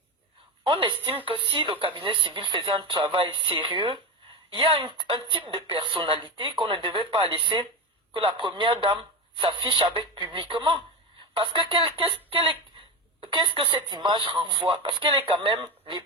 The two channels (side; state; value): both; normal; correlation 0.19